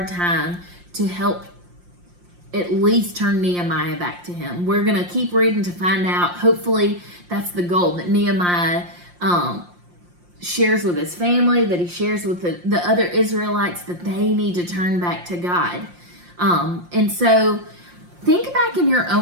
time to help at least turn Nehemiah back to him. We're going to keep reading to find out. Hopefully that's the goal, that Nehemiah shares with his family, that he shares with the other Israelites, that they need to turn back to God. And so think back in your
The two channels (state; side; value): late; left; 5.7 ms